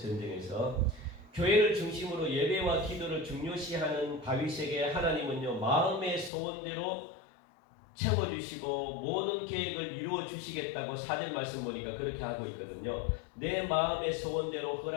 교회를 중심으로 예배와 기도를 중요시하는 다윗에게 하나님은요 마음의 소원대로 채워주시고 모든 계획을 이루어 주시겠다고 4절 말씀 보니까 그렇게 하고 있거든요. 내 마음의 소원대로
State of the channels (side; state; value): right; drops out; at 6.3 s